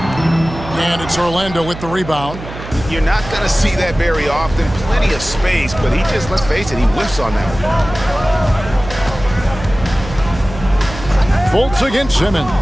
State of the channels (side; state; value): right; noise; hum, 12 dB below the sound